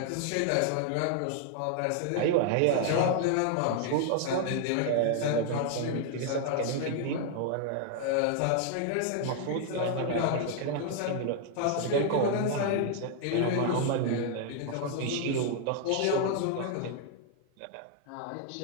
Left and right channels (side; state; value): both; different; correlation 0.00